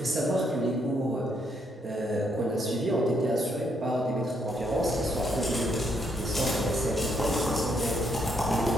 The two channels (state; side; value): normal; both; correlation 0.74